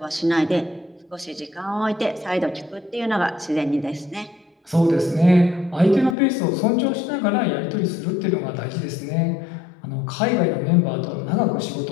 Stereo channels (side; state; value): right; drops out; at 6.2 s